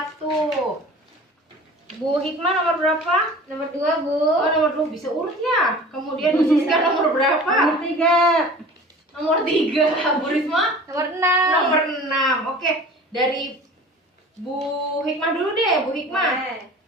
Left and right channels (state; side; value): normal; both; correlation 0.42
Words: Bu Hikmah nomor berapa? Nomor 2 Bu. Oh, nomor 2 bisa urut ya. Kemudian Bu Siska nomor berapa? Nomor 3. Nomor 3. Bu Risma Nomor 6. nomor 6. Oke, dari Bu Hikmah dulu deh, Bu Hikmah.